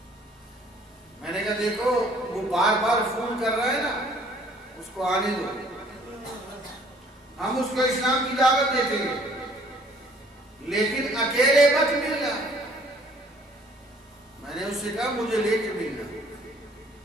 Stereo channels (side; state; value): both; normal; correlation 0.58